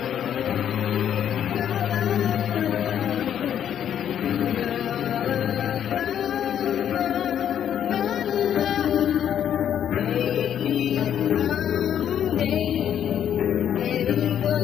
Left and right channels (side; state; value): right; quieter; 9.6 dB